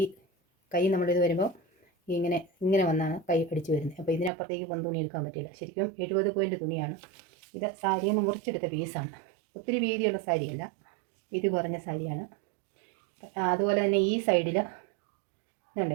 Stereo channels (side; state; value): left; drops out; at 4.3 s